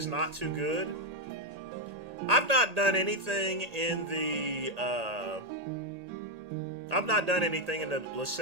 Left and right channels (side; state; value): left; late; 1.8 ms